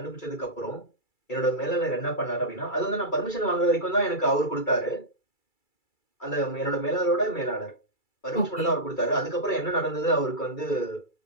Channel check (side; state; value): right; late; 2.3 ms